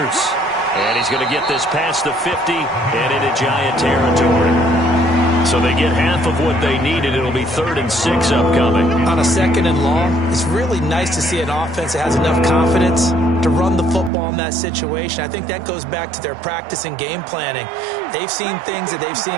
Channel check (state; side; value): drops out; left; at 14.1 s